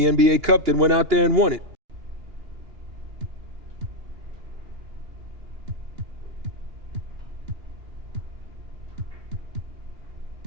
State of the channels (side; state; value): left; late; 2.8 ms